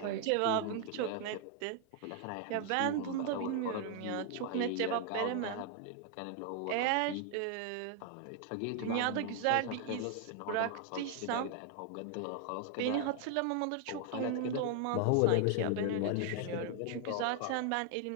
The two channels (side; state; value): both; different; correlation 0.00